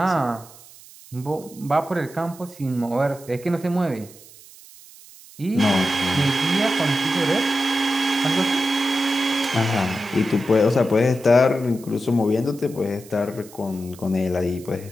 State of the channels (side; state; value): right; noise; hiss, 21 dB below the sound